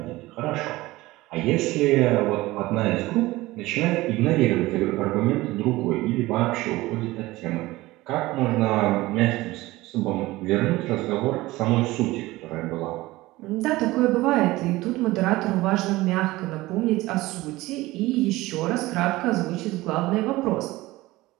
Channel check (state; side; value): quieter; left; 18.9 dB